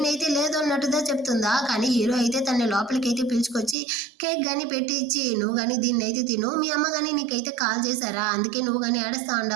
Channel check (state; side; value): drops out; left; at 3.8 s